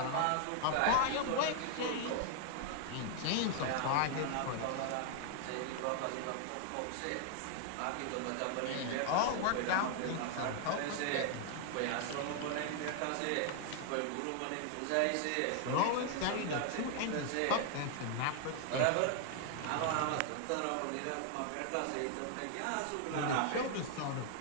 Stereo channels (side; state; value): both; different; correlation 0.00